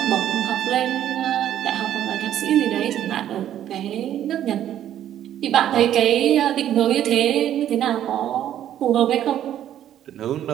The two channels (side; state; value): left; quieter; 11.2 dB